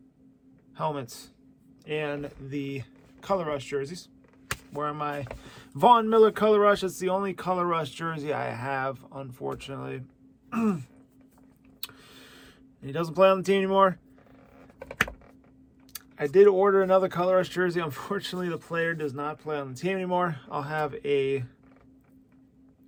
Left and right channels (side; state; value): both; identical; correlation 1.00